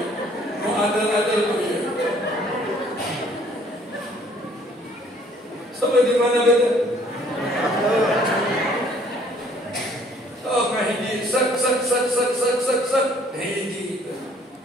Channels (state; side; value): normal; both; correlation 0.59